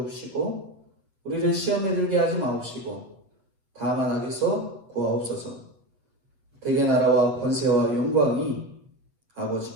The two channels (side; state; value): left; late; 7.8 ms